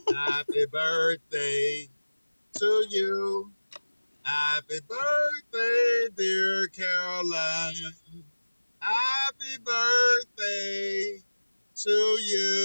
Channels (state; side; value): inverted; both; correlation -1.00